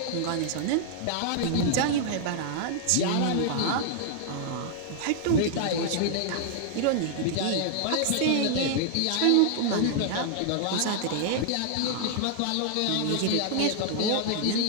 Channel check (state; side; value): different; both; correlation 0.00